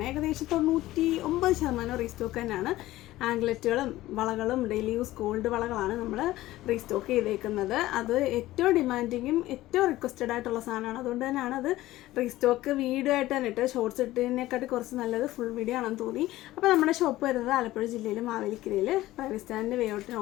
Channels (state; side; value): quieter; right; 16.4 dB